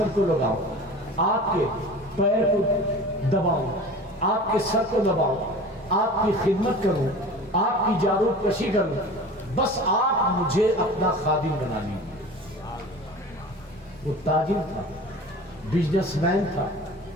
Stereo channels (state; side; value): normal; both; correlation 0.38